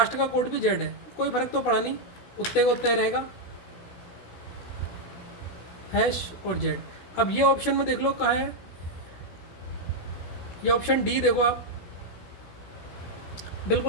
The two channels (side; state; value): right; late; 16 ms